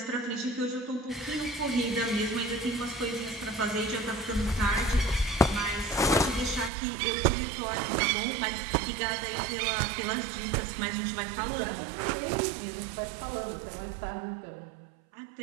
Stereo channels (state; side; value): drops out; left; at 6.7 s